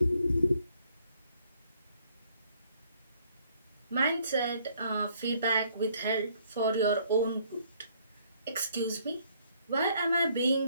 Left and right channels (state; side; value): inverted; both; correlation -0.65